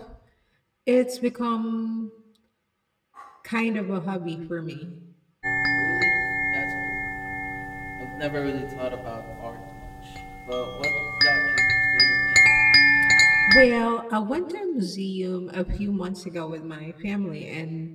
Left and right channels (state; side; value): identical; both; correlation 1.00